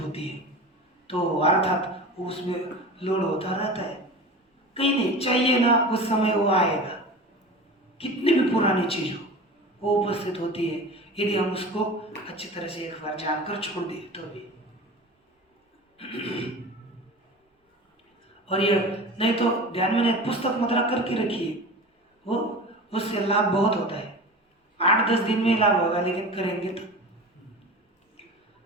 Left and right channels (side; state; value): both; normal; correlation 0.34